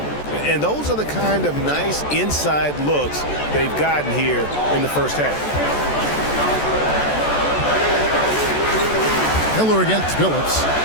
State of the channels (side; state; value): right; late; 14 ms